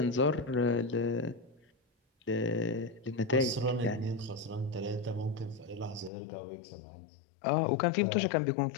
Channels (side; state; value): right; drops out; at 6.1 s